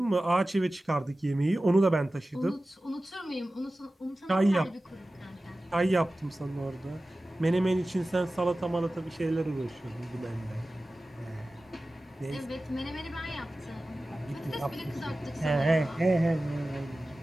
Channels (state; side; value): normal; both; correlation 0.96